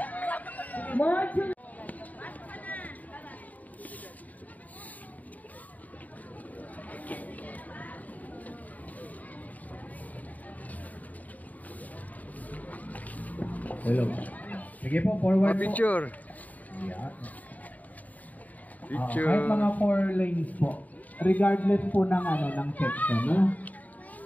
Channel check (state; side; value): late; right; 0.075 ms